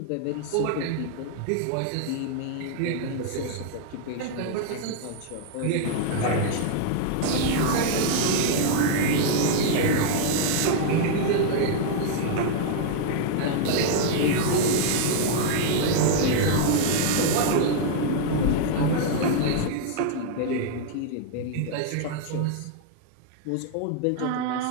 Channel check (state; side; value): different; both; correlation 0.00